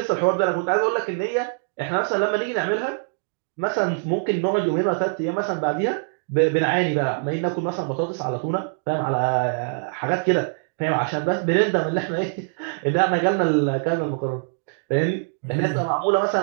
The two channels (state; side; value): silent; left; digital silence